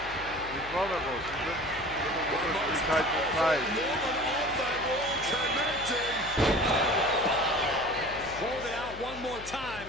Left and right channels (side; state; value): left; noise; hum, 15 dB below the sound